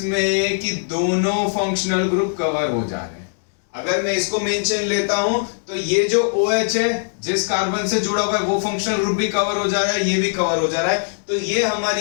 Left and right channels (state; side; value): silent; right; 65 dB below the other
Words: कि दोनों फंक्शनल ग्रुप कवर हो जा रहे हैं। अगर मैं इसको मेन चेन लेता हूं तो ये जो OH है जिस कार्बन से जुड़ा हुआ है वो फंक्शनल ग्रुप भी कवर हो जा रहा है, ये भी कवर हो जा रहा है। तो ये